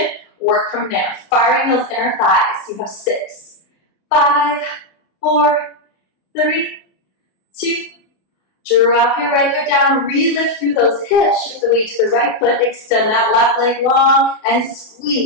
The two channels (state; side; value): late; right; 32 ms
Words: Work from there. Firing those inner thighs. You have 6, 5, 4, 3, 2. Drop your right foot down. Re-lift through those hips. Shift the weight to the right foot. Extend that left leg long and